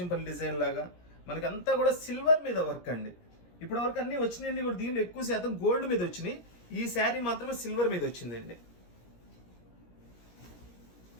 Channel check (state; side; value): late; right; 17 ms